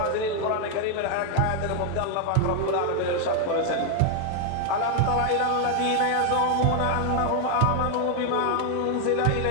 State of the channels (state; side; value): different; both; correlation 0.00